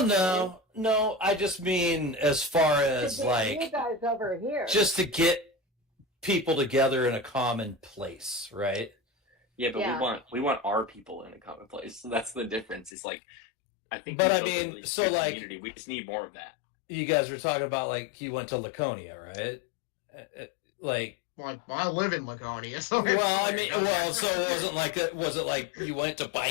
no, I just mean as far as You like guys over here. just to get people together in a common place, right? Yeah, but Yeah. we want our people in a common place. So that's the difference. It's like I think. But we I built a mean, really so, strong like- community. We just need more of that. You guys were talking about like he went to Laconia, right? Like, Like, I live in Laconia, so well, I mean, well, so it wasn't like was it like you went to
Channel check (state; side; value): drops out; right; at 12.9 s